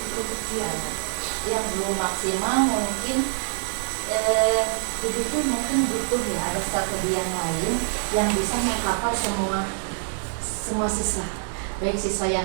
untuk Zia? Yang belum maksimal mungkin begitu, mungkin butuh ya ada strategi yang lain yang bisa mengcover semua siswa, baik siswa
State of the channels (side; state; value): left; silent; 62 dB below the other